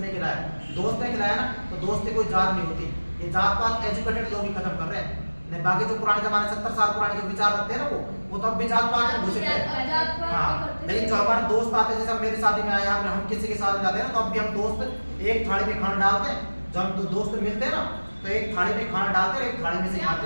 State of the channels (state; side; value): inverted; both; correlation -1.00